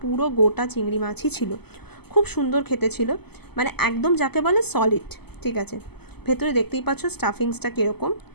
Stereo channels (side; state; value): right; late; 0.97 ms